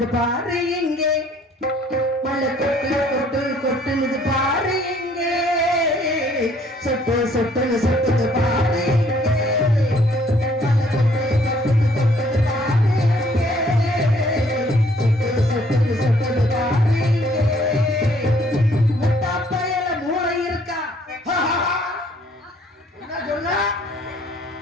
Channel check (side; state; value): both; normal; correlation 0.62